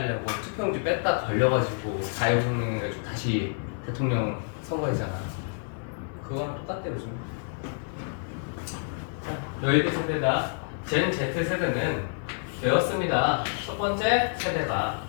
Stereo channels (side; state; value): right; silent; 59 dB below the other